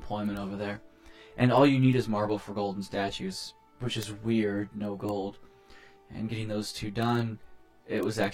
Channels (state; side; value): identical; both; correlation 1.00